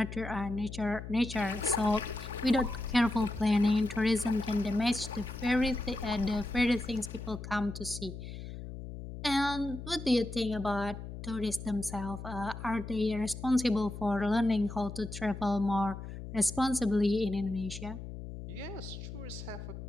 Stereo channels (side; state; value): left; noise; hum, 10 dB below the sound